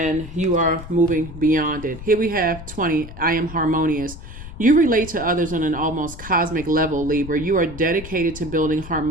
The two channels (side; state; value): left; noise; rumble, 13 dB below the sound